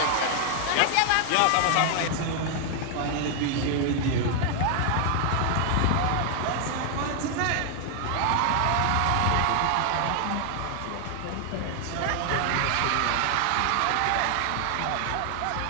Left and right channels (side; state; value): both; different; correlation 0.00